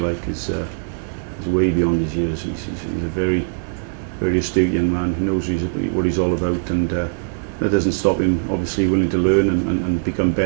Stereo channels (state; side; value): silent; left; digital silence